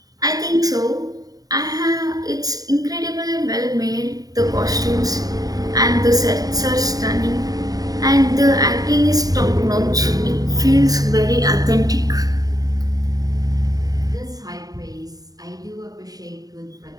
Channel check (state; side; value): late; left; 0.18 ms